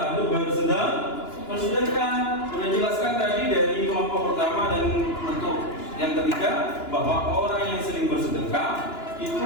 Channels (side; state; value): right; late; 2.9 ms